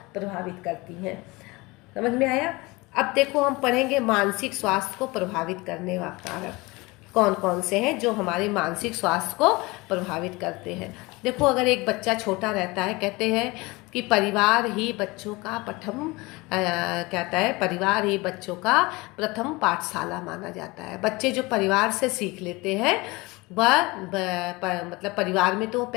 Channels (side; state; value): right; quieter; 23.4 dB